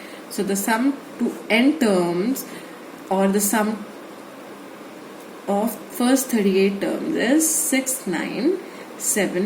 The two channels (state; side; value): identical; both; correlation 1.00